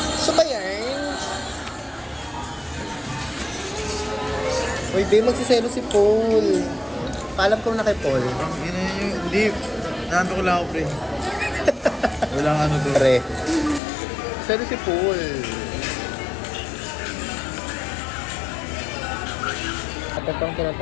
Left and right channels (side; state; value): right; drops out; at 13.8 s